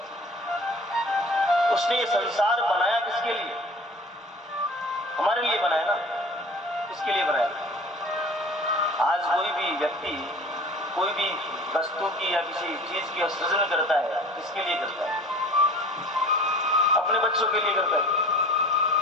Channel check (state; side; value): normal; both; correlation 0.43